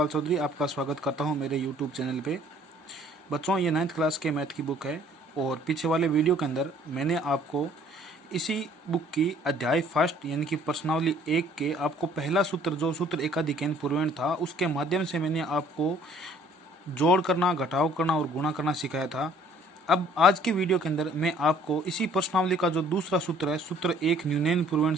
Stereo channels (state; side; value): normal; both; correlation 0.57